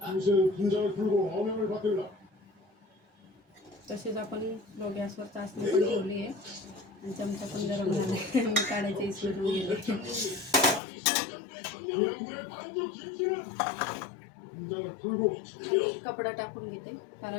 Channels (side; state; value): right; drops out; at 10.8 s